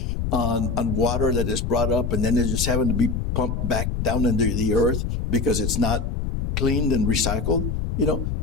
on water that is brought up, and then they're just having to be pumped back down into the earth because it's not cleaned and recycled.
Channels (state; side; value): noise; left; rumble, 1 dB below the sound